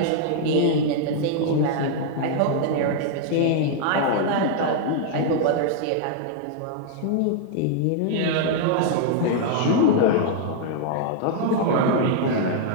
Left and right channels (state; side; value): different; both; correlation -0.01